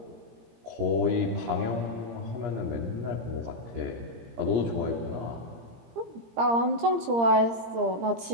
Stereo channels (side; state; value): left; late; 17 ms